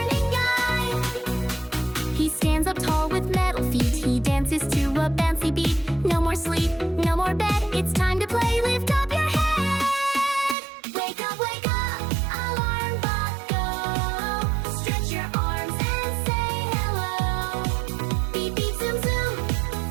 guide. He stands up tall with metal feet. He dances to a bouncy beat. No more sleep, no more bed. It's time to play. Lift up your head. Wake up, alarm clock go. Stretch your arms and say hello. Beep beep zoom zoom,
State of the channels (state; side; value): drops out; left; at 10.6 s